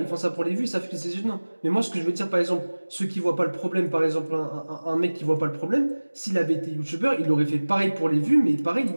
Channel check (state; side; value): inverted; both; correlation -1.00